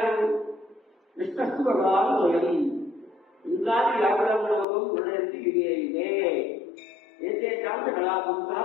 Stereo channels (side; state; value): right; drops out; at 4.7 s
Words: విష్ణు భగవాన్ స్వయం ఇంకా వ్యాపరంలోకం గుణయంతి వివేయిదే ఏతే కాంత కళాపుంస